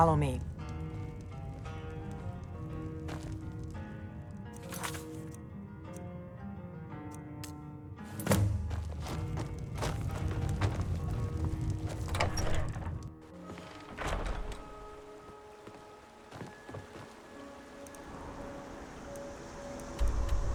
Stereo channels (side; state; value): both; identical; correlation 1.00